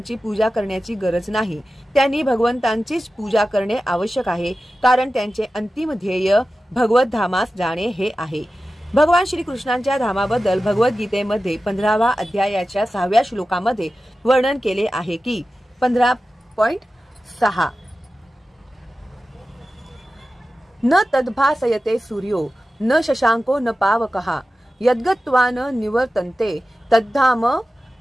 पूजा करण्याची गरज नाही. त्यांनी भगवंतांचीच पूजा करणे आवश्यक आहे, कारण त्यांचे अंतिम ध्येय भगवत धामास जाणे हे आहे. भगवान श्रीकृष्णांच्या धामाबद्दल भगवद्गीतेमध्ये 15व्या अध्यायाच्या 6व्या श्लोकामध्ये वर्णन केले आहे की 15.6 न तद्भासयते सूर्यो न शशांको न पावकः यद्गत्वा न निवर्तन्ते तद्धाम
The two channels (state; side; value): normal; both; correlation 0.94